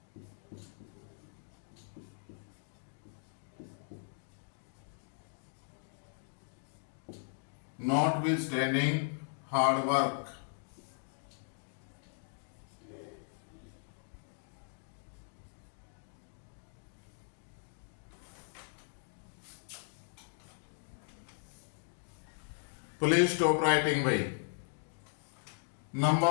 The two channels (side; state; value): right; silent; digital silence